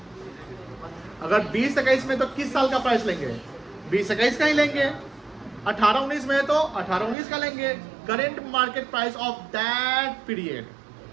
अगर 20-21 में तो किस साल का प्राइस लेंगे? 20-21 का ही लेंगे। 18-19 में है तो 18-19 का लेंगे। Current market price of that period,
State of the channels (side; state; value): left; drops out; at 7.2 s